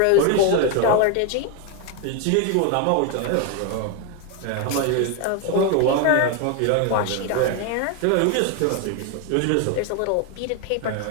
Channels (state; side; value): different; both; correlation 0.01